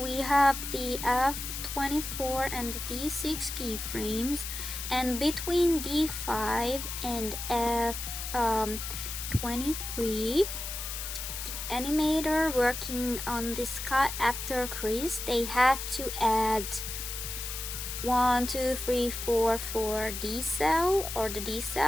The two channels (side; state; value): left; noise; hiss, 6 dB below the sound